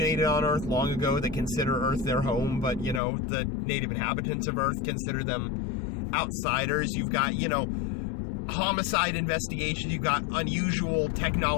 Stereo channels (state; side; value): drops out; right; at 3.0 s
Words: on Earth long ago that consider Earth their home, but, the native inhabitants of Earth consider them outsiders. You've got, homicide investigations. You've got unusual